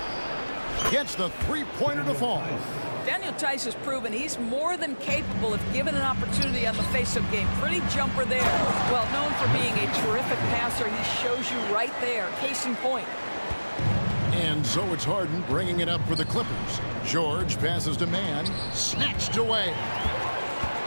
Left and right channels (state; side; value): inverted; both; correlation -1.00